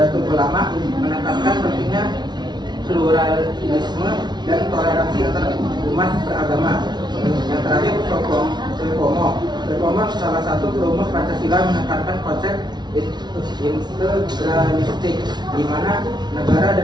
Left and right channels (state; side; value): late; left; 0.20 ms